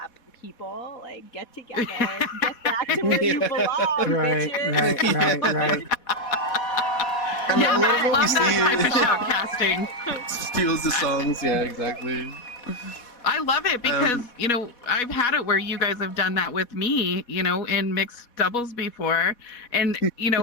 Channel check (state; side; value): late; right; 4.1 ms